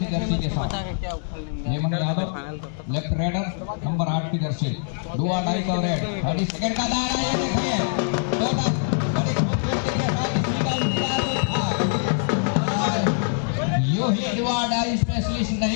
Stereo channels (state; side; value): silent; right; digital silence